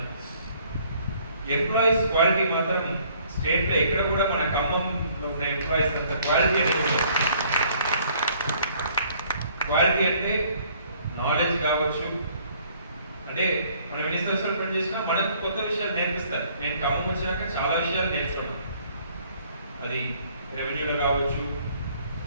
ఎంప్లాయీస్ క్వాలిటీ మాత్రం స్టేట్లో ఎక్కడ కూడా మన ఖమ్మంలో ఉన్న ఎంప్లాయీస్ అంత క్వాలిటీ అనేది ఉంటుంది. క్వాలిటీ అంటే నాలెడ్జ్ కావచ్చు, అంటే మనం ఎన్ని సంవత్సరాలు పనిచేసినా మనకు కొత్త విషయాలు నేర్పిస్తారు. నేను ఖమ్మం వచ్చినాక చాలా విషయాలు నేర్చుకున్నాను, అది రెవెన్యూలో కావచ్చు,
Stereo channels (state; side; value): inverted; both; correlation -0.61